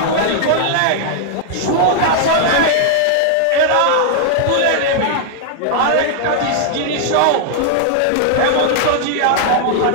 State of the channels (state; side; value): different; both; correlation 0.00